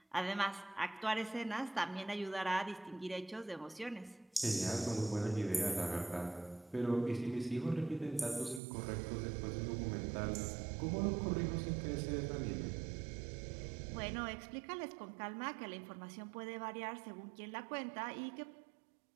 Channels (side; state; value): left; drops out; at 8.6 s